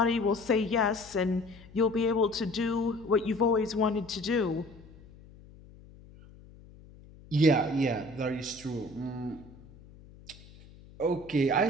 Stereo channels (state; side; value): noise; left; hum, 22 dB below the sound